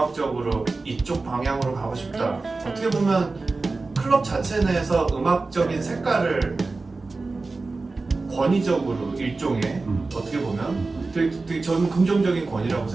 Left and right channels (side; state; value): left; quieter; 3.7 dB